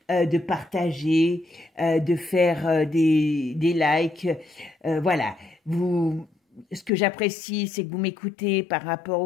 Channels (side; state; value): right; drops out; at 6.9 s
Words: de partager, de faire des likes. Voilà. Ce que j'apprécie, c'est que vous m'écoutez par rapport